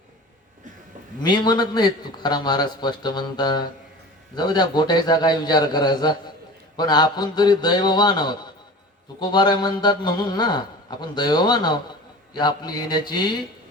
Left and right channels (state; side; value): normal; both; correlation 0.38